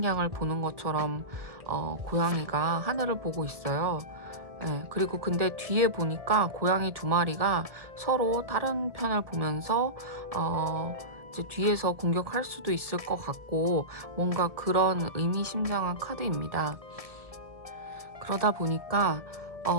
보는 것처럼 고양이가 하늘을 보고 있어요. 네, 그리고 근데 뒤에 보니까 고양이 2마리가 서로 다른 편을 보면서 이제 뒤에서 공격할 수도 있을 것 같고 뭔가 그런 의미심장한 카드입니다. 그러다 보니까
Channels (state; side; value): late; left; 1.7 ms